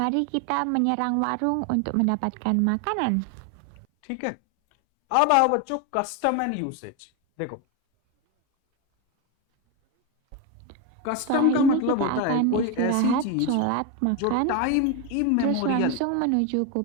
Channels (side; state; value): both; different; correlation 0.02